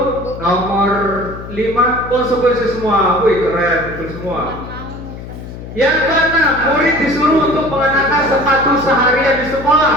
nomor 5 konsekuensi semua. Wih, keren, betul semua. Yang keenam, murid disuruh untuk mengenakan sepatu seharian di sekolah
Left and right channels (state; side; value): noise; left; hum, 12 dB below the sound